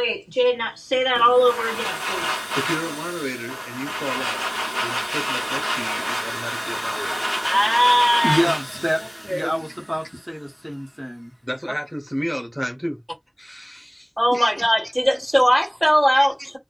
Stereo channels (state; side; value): identical; both; correlation 1.00